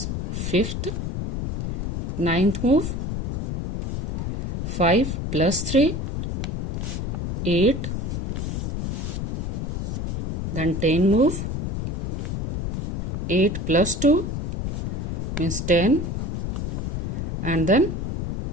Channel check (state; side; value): noise; left; rumble, 2 dB below the sound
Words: 5th. 9th move, 5 plus 3, 8, then 10 move, 8 plus 2 means 10, and then